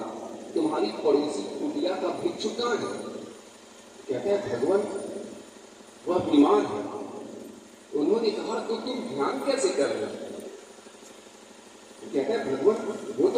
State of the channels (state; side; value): identical; both; correlation 1.00